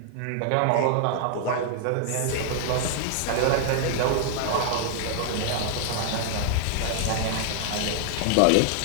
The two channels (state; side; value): different; both; correlation 0.00